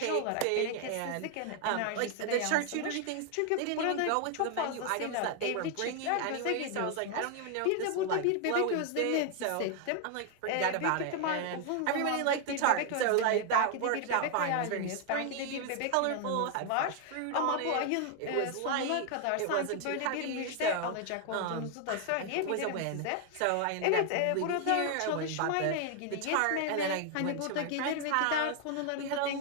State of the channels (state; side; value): different; both; correlation 0.00